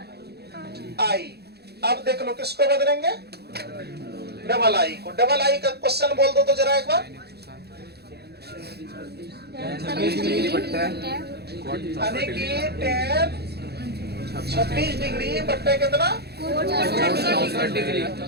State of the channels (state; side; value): late; left; 0.47 ms